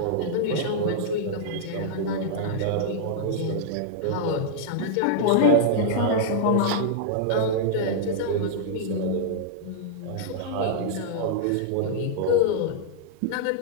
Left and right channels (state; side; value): different; both; correlation -0.01